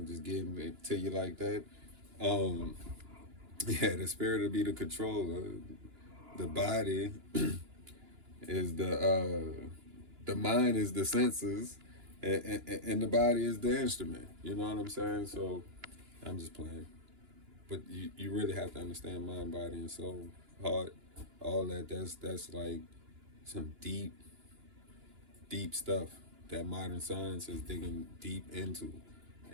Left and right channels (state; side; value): late; left; 2.9 ms